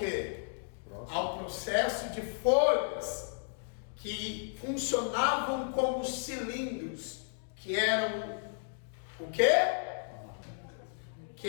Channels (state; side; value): silent; right; digital silence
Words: Ao processo de folhas que funcionavam como cilindros, que eram o quê?